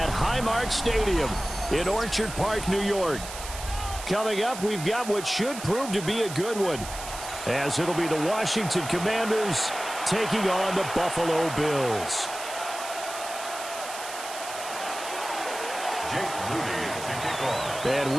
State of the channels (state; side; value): noise; right; hiss, 10 dB below the sound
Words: Highmark Stadium in Orchard Park, New York. Coming up, we've got what should prove to be a good one, as it'll be the Washington Commanders taking on the Buffalo Bills. Jake Moody to kick off. And